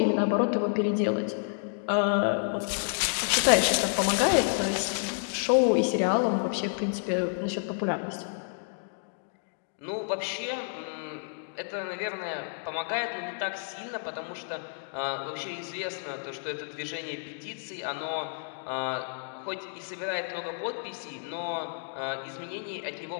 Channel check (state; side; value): silent; right; digital silence